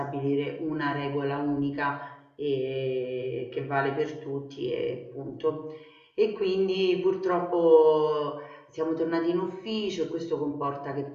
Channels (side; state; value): both; identical; correlation 1.00